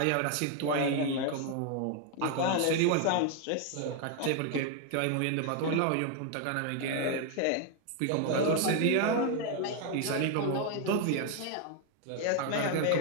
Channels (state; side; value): different; both; correlation 0.01